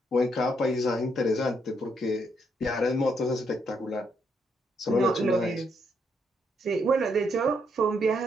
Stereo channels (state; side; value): normal; both; correlation 0.75